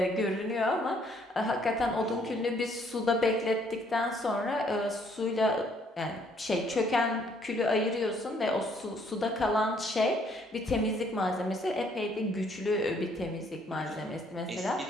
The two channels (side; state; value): both; normal; correlation 0.66